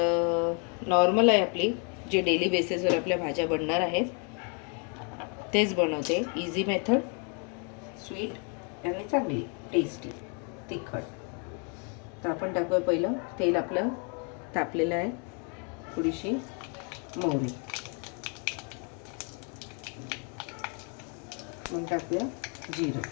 नॉर्मल आहे आपली, जे डेली बेसिसवर आपल्या भाज्या बनणार आहेत तेच बनवते. इझी मेथड, स्वीट आणि चांगली टेस्टी तिखट. तर आपण टाकूया पहिलं तेल. आपलं तापलेलं आहे. थोडीशी मोहरी, मग टाकूया जिरं,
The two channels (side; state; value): right; quieter; 37.8 dB